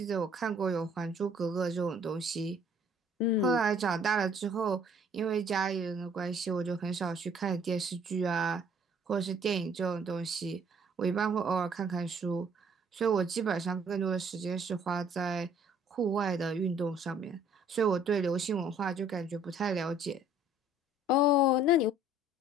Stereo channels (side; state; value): both; normal; correlation 0.58